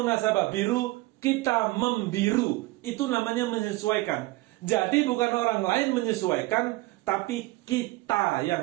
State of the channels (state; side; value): quieter; left; 20.6 dB